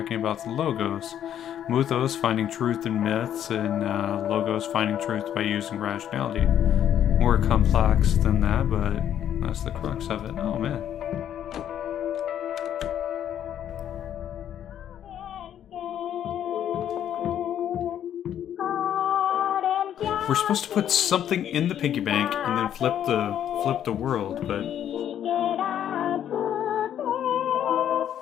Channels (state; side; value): quieter; right; 10.2 dB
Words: about the logos. Mythos finding truth in myths, and logos finding truth by using rationality. More complex than that, but that's the crux of it. Oh man. We're supposed to put something in the piggy bank and then flip the world, but